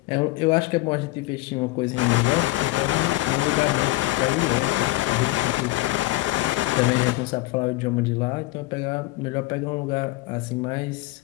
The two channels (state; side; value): quieter; right; 19.5 dB